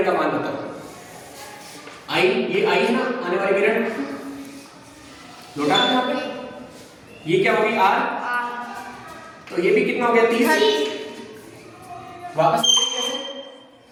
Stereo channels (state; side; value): identical; both; correlation 1.00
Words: का मान बताओ। आई, ये आई है ना आने वाली किरण, लौटा यहाँ पे, ये क्या होगी आर, तो ये भी कितना हो गया 30, वापस कैसे,